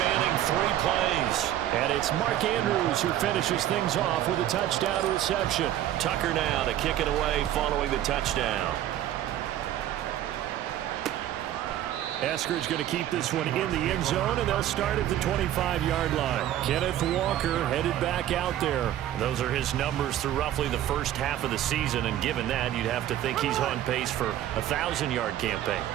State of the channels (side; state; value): left; quieter; 12.3 dB